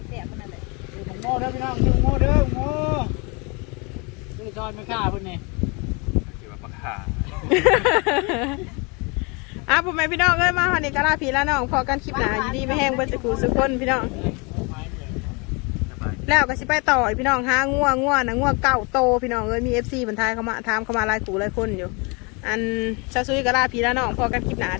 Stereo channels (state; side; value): quieter; right; 30.2 dB